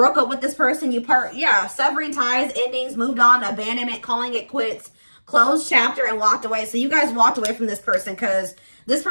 up with this person. Severing ties, endings, moved on, abandonment, calling it quits, closed chapter, and walked away. So you guys walked away from this person because this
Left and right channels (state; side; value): inverted; both; correlation -1.00